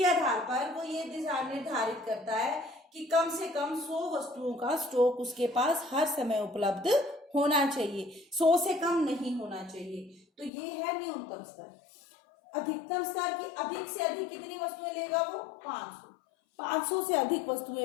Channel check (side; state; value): right; drops out; at 10.5 s